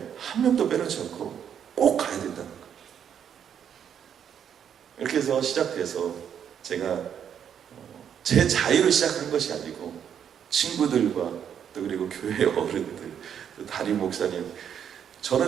한 명도 빼놓지 않고 꼭 가야 된다는 거예요. 이렇게 해서 시작해서 제가 제 자유로 시작한 것이 아니고 친구들과 또 그리고 교회 어른들, 또 담임 목사님, 저는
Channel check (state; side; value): quieter; left; 8.6 dB